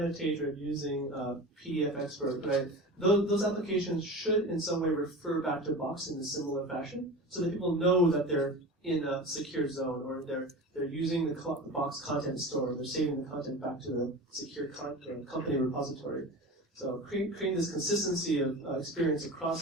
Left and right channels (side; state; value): both; normal; correlation 0.32